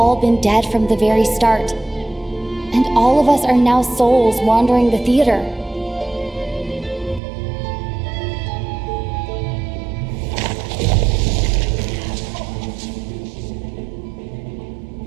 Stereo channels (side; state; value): left; drops out; at 7.2 s